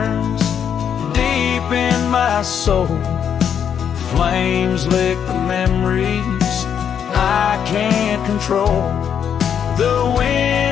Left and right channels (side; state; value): right; quieter; 8.2 dB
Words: deep in my soul. Flames lick the memories I can't control. The